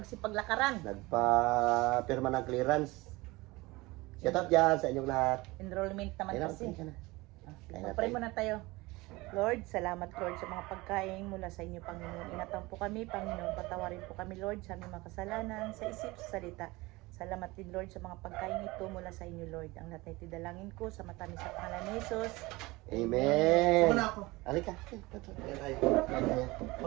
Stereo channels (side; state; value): left; quieter; 21.8 dB